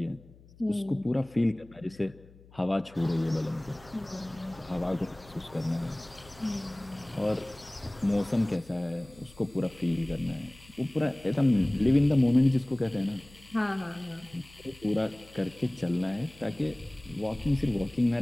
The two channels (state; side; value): noise; left; hum, 24 dB below the sound